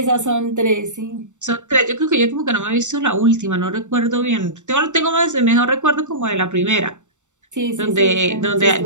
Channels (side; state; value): left; late; 0.85 ms